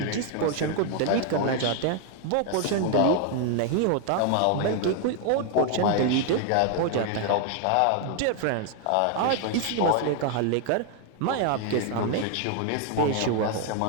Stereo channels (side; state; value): both; different; correlation 0.00